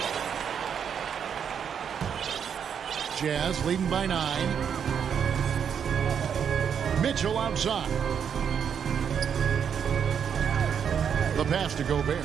Jazz leading by 9. Mitchell outside. The pass to Gobert.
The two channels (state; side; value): quieter; left; 7.7 dB